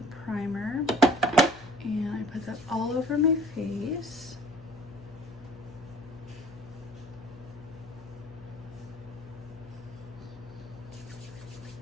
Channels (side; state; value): left; noise; hum, 19 dB below the sound